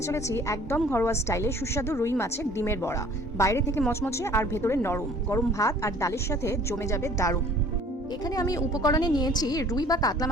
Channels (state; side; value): normal; both; correlation 0.52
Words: চলেছি একদম ঘরোয়া স্টাইলে সুস্বাদু রুই মাছের ডিমের বড়া। বাইরে থেকে মচমচে আর ভেতরে নরম, গরম ভাত আর ডালের সাথে জমে যাবে দারুণ। এখানে আমি উপকরণে নিয়েছি রুই বা কাতলা